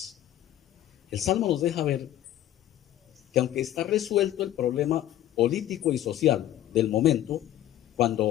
El Salmo nos deja ver que aunque está resuelto el problema político y social del momento,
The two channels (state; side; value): quieter; right; 12.8 dB